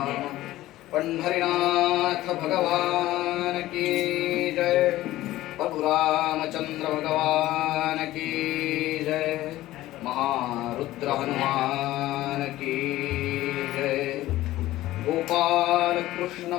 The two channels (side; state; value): right; quieter; 15.9 dB